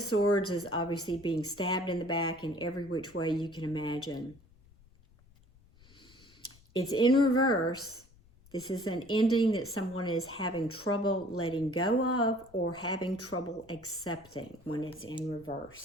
Swords is obviously being stabbed in the back in every which way you can imagine. It's in reverse. This is an ending that someone is having trouble letting go of or having trouble accepting when it's in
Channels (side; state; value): left; noise; rumble, 27 dB below the sound